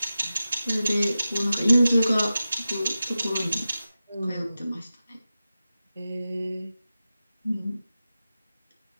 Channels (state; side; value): inverted; both; correlation -0.94